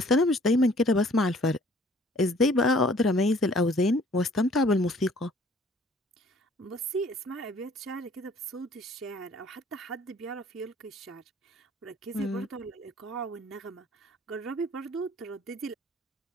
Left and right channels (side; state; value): both; normal; correlation 0.56